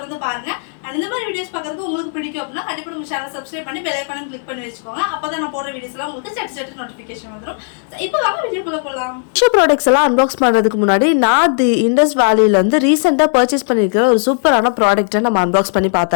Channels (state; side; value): silent; right; 69 dB below the other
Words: பாருங்க. அண்ட் இந்த மாதிரி வீடியோஸ் பார்க்கறது உங்களுக்கு பிடிக்கும் அப்படினா கண்டிப்பா நம்ம சேனலை சப்ஸ்கிரைப் பண்ணி பெல் ஐகானை கிளிக் பண்ணி வெச்சுக்கோங்க. அப்பதான் நான் போடுற வீடியோஸ்லாம் உங்களுக்கு சட்டு நோட்டிஃபிகேஷன் வந்துரும். சோ இப்போ வாங்க வீடியோக்குள்ள போலாம். மீஷோ ப்ராடக்ட்ஸ் எல்லாம் அன்பாக்ஸ் பண்றதுக்கு முன்னாடி நான் தி இண்டஸ் வேலியில இருந்து ரீசெண்டா பர்ச்சேஸ் பண்ணிருக்கிற ஒரு சூப்பரான ப்ராடக்ட்டை நம்ம அன்பாக்ஸ் பண்ணி